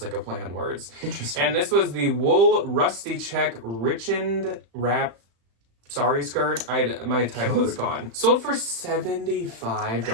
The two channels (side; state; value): left; late; 35 ms